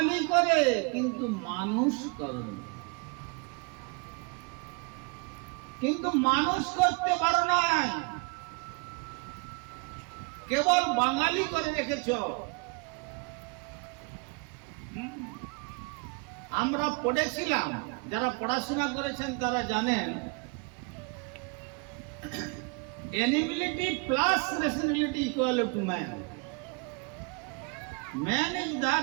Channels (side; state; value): left; quieter; 31.4 dB